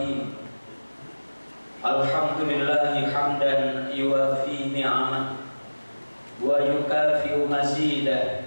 Alhamdulillahi hamdan yuwafi ni'amah wa yukafi'u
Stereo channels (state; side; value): inverted; both; correlation -1.00